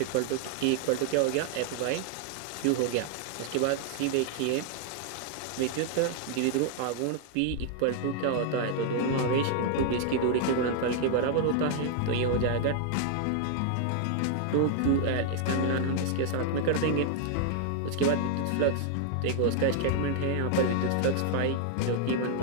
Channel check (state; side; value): different; both; correlation 0.00